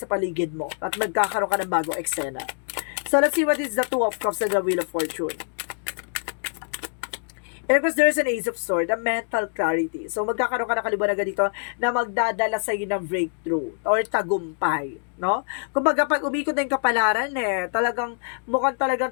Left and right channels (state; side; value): silent; right; digital silence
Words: paligid mo at magkakaroon ka ng bagong eksena. So, let's see what is the Two of Cups and the Wheel of Fortune. And of course, there's an Ace of Swords, a mental clarity. So, magkakaroon ka ng kaliwanagan dito na magdadala sa iyo ng breakthrough or tagumpay, no? Kumbaga, pag umikot na yung kapalaran, mukhang